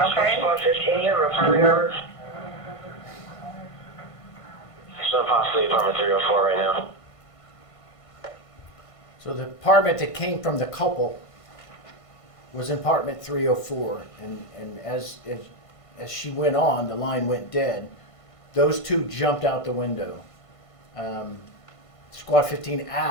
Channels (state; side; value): late; right; 1.5 ms